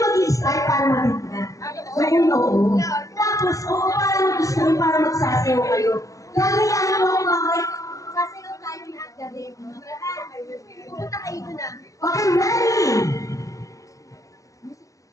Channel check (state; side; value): late; right; 0.16 ms